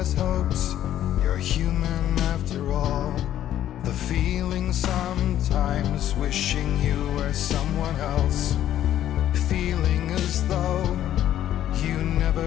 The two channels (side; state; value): right; quieter; 11.8 dB